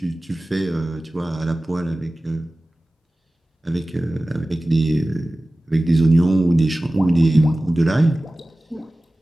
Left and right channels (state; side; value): normal; both; correlation 0.97